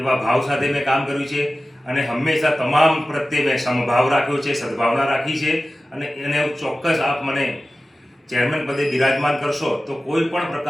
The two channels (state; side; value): normal; both; correlation 0.95